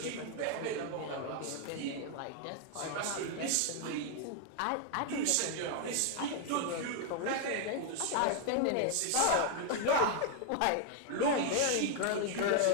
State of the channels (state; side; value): different; both; correlation 0.00